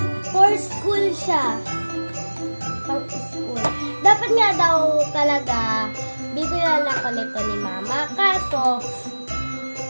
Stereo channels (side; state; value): both; inverted; correlation -1.00